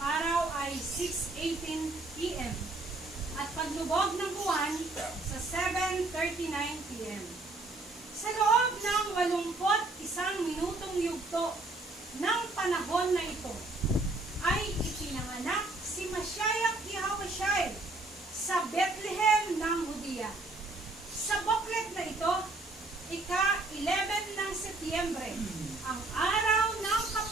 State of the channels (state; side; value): quieter; left; 3.1 dB